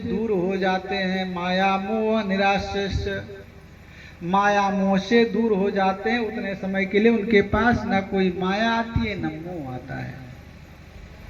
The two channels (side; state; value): both; identical; correlation 1.00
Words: हो जाते हैं। माया मोह निराश्च, माया मोह से दूर हो जाते हैं। उतने समय के लिए उनके पास न कोई माया आती है न मोह आता है।